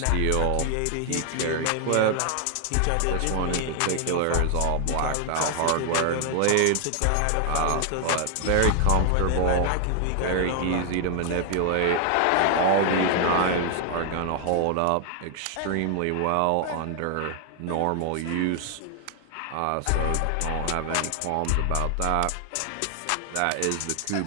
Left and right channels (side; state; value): both; different; correlation 0.00